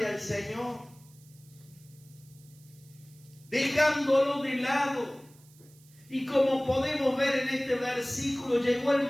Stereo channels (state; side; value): noise; right; hiss, 27 dB below the sound